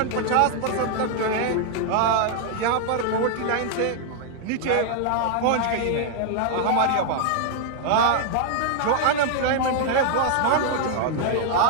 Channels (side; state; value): both; different; correlation 0.00